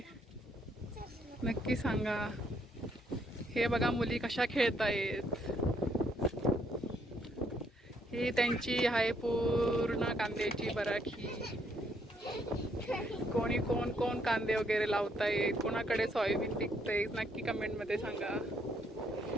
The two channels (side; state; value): both; normal; correlation 0.71